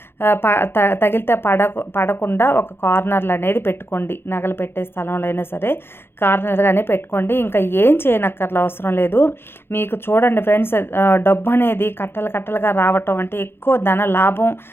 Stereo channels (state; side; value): late; right; 0.11 ms